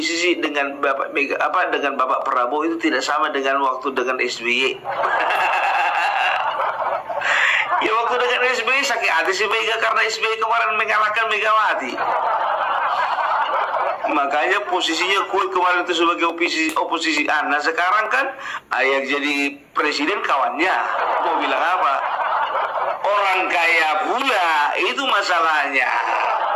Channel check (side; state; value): both; identical; correlation 1.00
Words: dengan dengan Bapak Prabowo itu tidak sama dengan waktu dengan SBY. Ya waktu dengan SBY sakit hati si Mega karena SBY kemarin mengalahkan Megawati. Makanya posisinya kue kemarin itu sebagai oposisi. Nah sekarang kan yang jadi presiden kawannya. Mau bilang apa? Orang kaya pula, itu masalahnya.